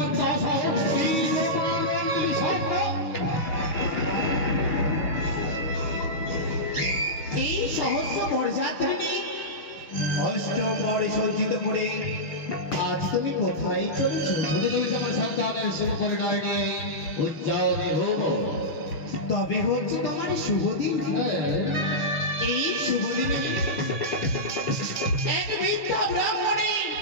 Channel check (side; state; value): right; late; 6.2 ms